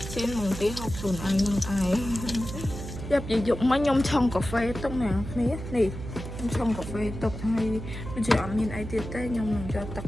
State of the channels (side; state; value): right; noise; hum, 9 dB below the sound